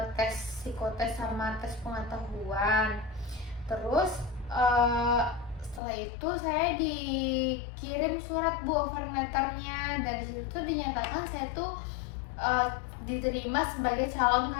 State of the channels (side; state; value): right; drops out; at 5.8 s